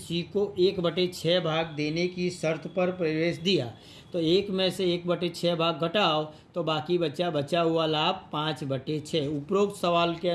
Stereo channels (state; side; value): identical; both; correlation 1.00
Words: को 1/6 भाग देने की शर्त पर प्रवेश दिया। तो 1 में से 1/6 भाग घटाओ तो बाकी बचा हुआ लाभ 5/6। उपरोक्त सवाल के